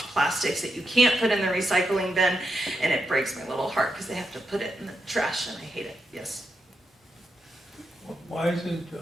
plastics that you can't put in the recycling bin, and it breaks my little heart because they have to put it in the trash and I hate it. Yes? Why isn't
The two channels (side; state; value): both; normal; correlation 0.85